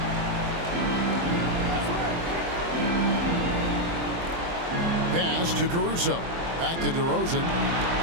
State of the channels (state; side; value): late; left; 23 ms